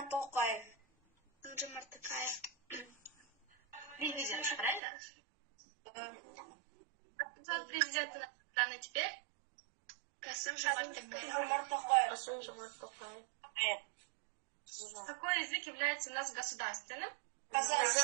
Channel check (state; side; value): drops out; left; at 4.8 s